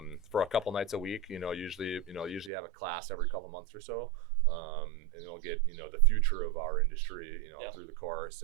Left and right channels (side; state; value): left; drops out; at 2.5 s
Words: a couple nights a week. Usually have a class every couple months or so, and they'll get the future of our industry, through the course.